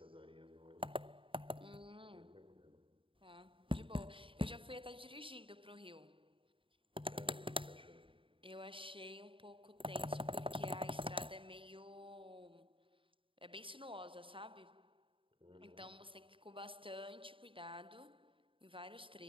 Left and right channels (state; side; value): late; left; 0.25 ms